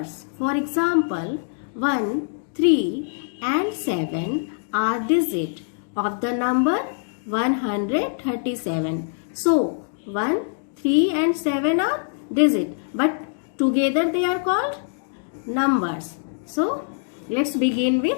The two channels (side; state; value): right; silent; digital silence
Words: For example, 1, 3 and 7 are digit of the number 137. So 1, 3 and 7 are digit, but together they are called numbers. So let's begin